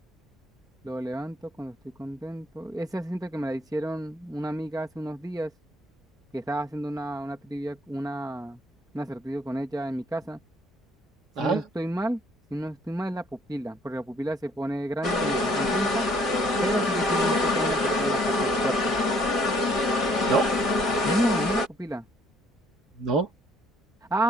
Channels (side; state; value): both; normal; correlation 0.63